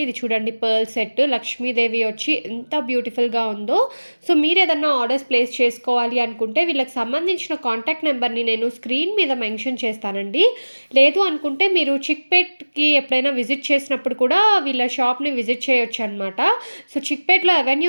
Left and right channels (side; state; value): both; inverted; correlation -1.00